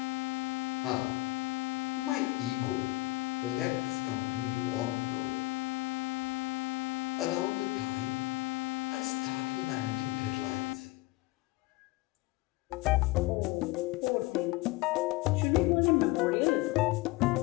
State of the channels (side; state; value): right; quieter; 21.2 dB